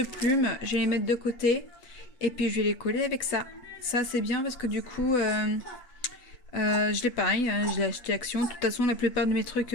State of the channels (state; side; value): late; right; 8.1 ms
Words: plumes, je vais les mettre de côté et puis je vais les coller avec ça. Ça c'est bien parce que du coup je l'ai pareil, hein, je l'ai acheté à Action. De toute façon, la plupart de mes trucs